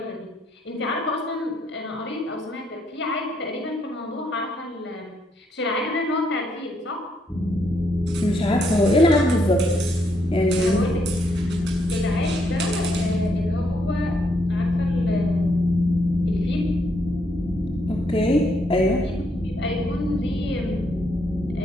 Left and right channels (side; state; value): both; normal; correlation 0.75